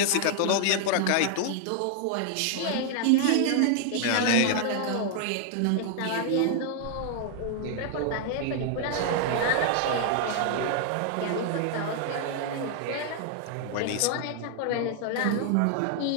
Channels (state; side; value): different; both; correlation 0.00